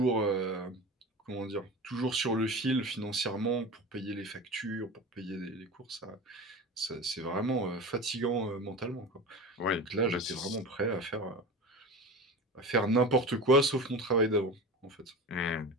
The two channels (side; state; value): both; normal; correlation 0.31